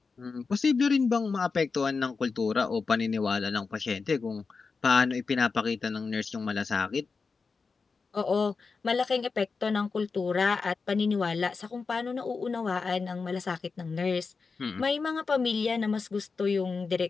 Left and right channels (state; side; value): quieter; right; 4.7 dB